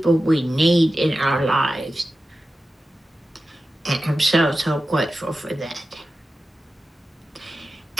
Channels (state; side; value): normal; both; correlation 0.93